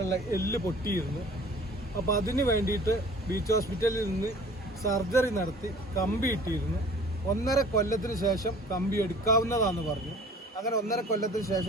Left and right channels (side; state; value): both; normal; correlation 0.47